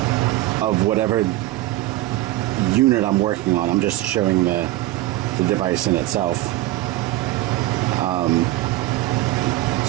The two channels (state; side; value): quieter; left; 16.7 dB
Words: of whatever unit I'm working on. I'm just showing the device in itself.